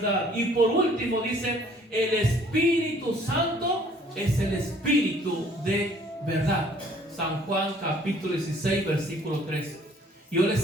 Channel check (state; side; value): normal; both; correlation 0.58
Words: Y por último dice, el Espíritu Santo es el Espíritu de verdad. San Juan capítulo 16 versículo 13. Yo